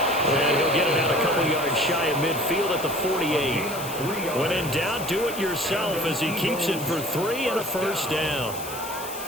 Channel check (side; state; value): left; noise; hiss, 11 dB below the sound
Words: And he'll get it out a couple yards shy of midfield at the 48. When in doubt, do it yourself as he keeps it for 3 and a first down.